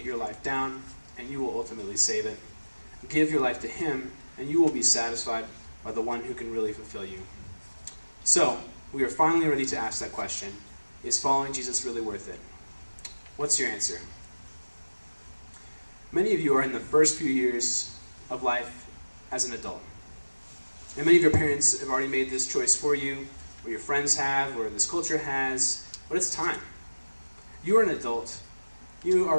your life down, and you will ultimately save it. Give your life to him, and you will be satisfied by the one who can really fulfill you. So, we are finally ready to ask that question. Is following Jesus really worth it? What's your answer? Many of you are in the first few years of life as an adult. And many of your parents have already made this choice for you, or your friends have, or this culture has, but it's time. You are an adult. You are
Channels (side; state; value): both; inverted; correlation -1.00